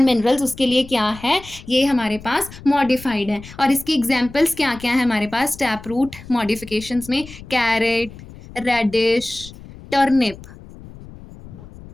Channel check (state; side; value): noise; left; rumble, 17 dB below the sound